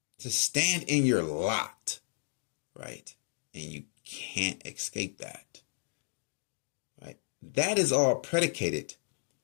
to stand in your lot, right? And you can't escape that, right? That is all predicated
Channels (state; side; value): silent; right; digital silence